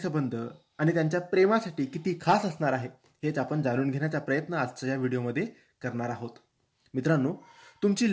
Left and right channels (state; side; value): identical; both; correlation 1.00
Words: आणि त्यांच्या प्रेमासाठी किती खास असणार आहे हेच आपण जाणून घेण्याचा प्रयत्न आजच्या या व्हिडिओमध्ये करणार आहोत. मित्रांनो,